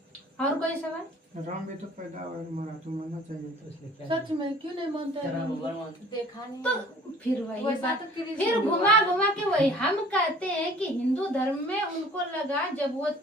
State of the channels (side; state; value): both; normal; correlation 0.50